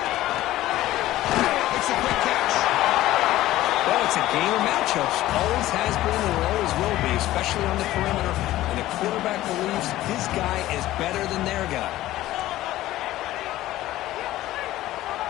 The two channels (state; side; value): quieter; right; 15.4 dB